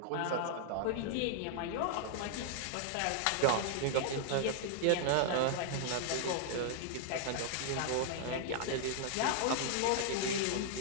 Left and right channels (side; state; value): both; different; correlation -0.01